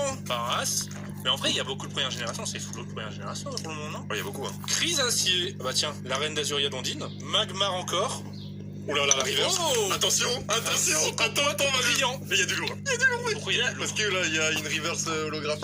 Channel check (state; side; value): identical; both; correlation 1.00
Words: Paras. Mais en vrai, il y a beaucoup de première génération. C'est full de première génération pour le moment, non? Il y a beaucoup, hein. Chrysacier. Ah bah tiens, la reine d'Azuria d'Ondine. Magmar encore. Oh là là, la reverse. Oh Attention, attends, brillant. Il y a du lourd. Pourquoi il y a Parce que là, il y a une reverse